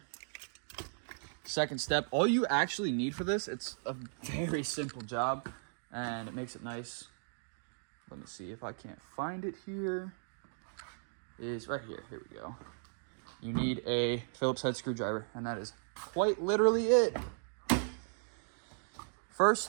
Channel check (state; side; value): silent; left; digital silence